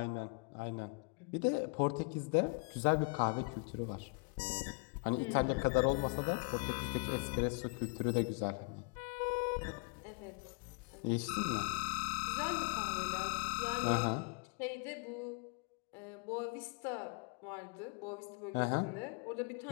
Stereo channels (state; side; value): quieter; right; 32.6 dB